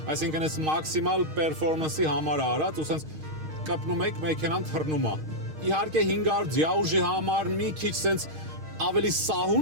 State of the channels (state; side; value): late; left; 6.4 ms